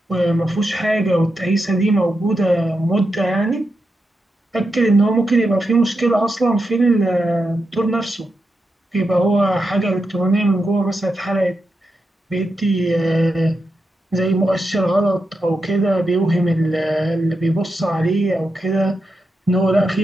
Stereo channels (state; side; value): normal; both; correlation 0.87